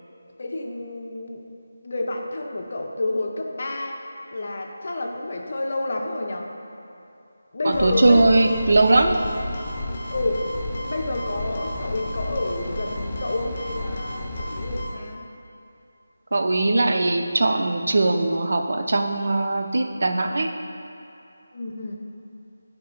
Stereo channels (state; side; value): inverted; both; correlation -0.94